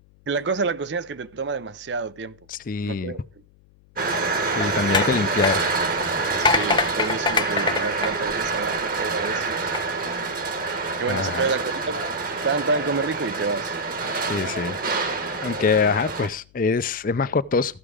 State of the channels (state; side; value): noise; left; hum, 29 dB below the sound